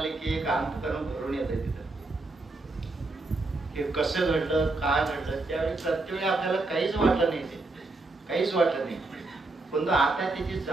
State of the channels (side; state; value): left; quieter; 3.2 dB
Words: की एक अंतकरण भरून येतं. तिथं हे कसं घडलं, काय घडलं, त्यावेळी प्रत्येक आपल्याला काहीच वाटलं नाही, ते काहीच वाटलं नाही. पण आता त्याची